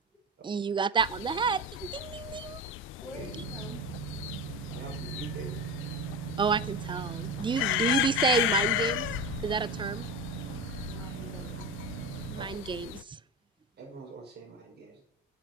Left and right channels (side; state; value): both; normal; correlation 0.24